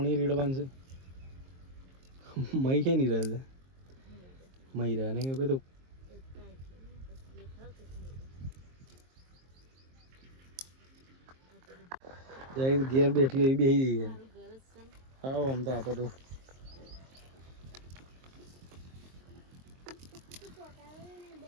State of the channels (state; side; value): late; left; 23 ms